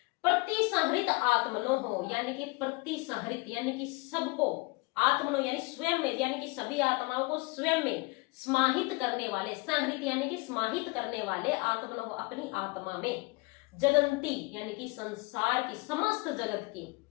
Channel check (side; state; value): right; quieter; 25.9 dB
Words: प्रति संहृत आत्मनो हो यानी कि प्रति संहृत यानी कि सबको, आत्मनो यानी स्वयं में, यानी कि सभी आत्माओं को स्वयं में समाहित करने वाले, संहृत यानी कि समाहित करने वाले, आत्मनो अपनी आत्मा में, जगंती यानी कि संसार की समस्त जगत की,